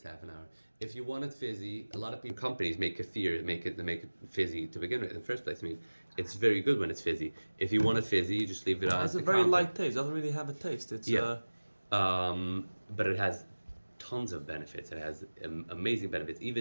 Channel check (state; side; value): inverted; both; correlation -1.00